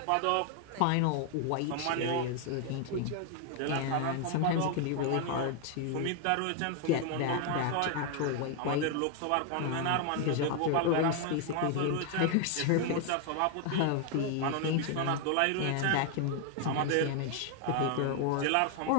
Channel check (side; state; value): both; different; correlation 0.01